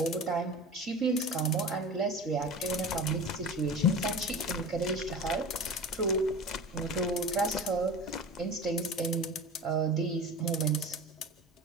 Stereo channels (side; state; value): both; normal; correlation 0.34